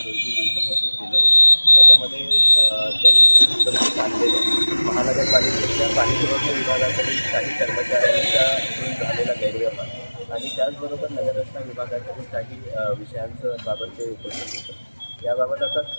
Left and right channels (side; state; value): both; inverted; correlation -1.00